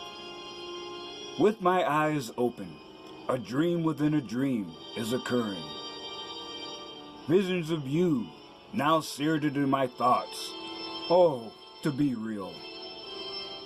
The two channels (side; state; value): both; identical; correlation 1.00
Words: With my eyes open, a dream within a dream is occurring. Visions of you now seared into my thoughts. Oh, to be real.